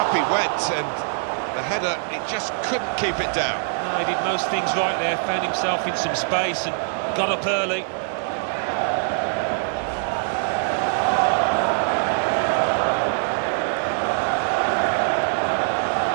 he went, and the header, it just couldn't keep it down. No, he did most things right there, found himself in some space and got up early.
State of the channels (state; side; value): silent; left; 63 dB below the other